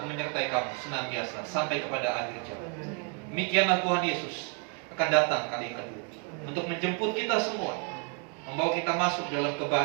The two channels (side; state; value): left; quieter; 35.9 dB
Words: menyertai kamu senantiasa sampai kepada akhir zaman. Demikianlah Tuhan Yesus akan datang kali kedua untuk menjemput kita semua, membawa kita masuk dalam